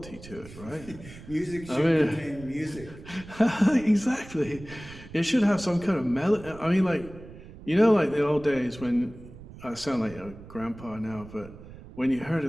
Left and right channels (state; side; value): noise; right; rumble, 17 dB below the sound